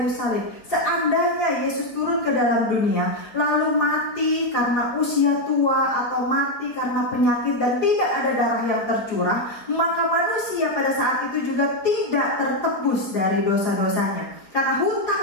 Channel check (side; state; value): right; late; 4.9 ms